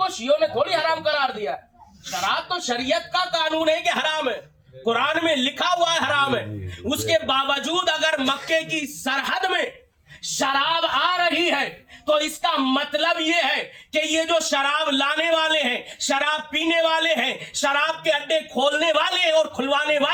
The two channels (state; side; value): identical; both; correlation 1.00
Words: شیعوں نے تھوڑی حرام قرار دیا. شراب تو شریعت کا قانون ہے کہ حرام ہے، قرآن میں لکھا ہوا ہے حرام ہے. اس کے باوجود اگر مکے کی سرحد میں شراب آ رہی ہے تو اس کا مطلب یہ ہے کہ یہ جو شراب لانے والے ہیں، شراب پینے والے ہیں، شراب کے اڈے کھولنے والے اور کھلوانے